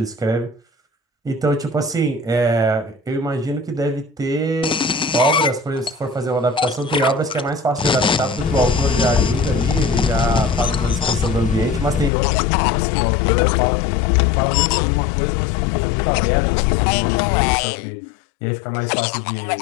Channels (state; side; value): drops out; right; at 12.1 s